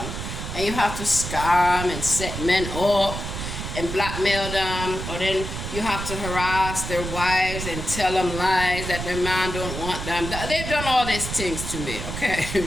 and you have to scam and set men up and blackmail them, or then you have to harass their wives and tell them lies that their man don't want them. They've done all these things to me, okay?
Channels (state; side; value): noise; right; rumble, 6 dB below the sound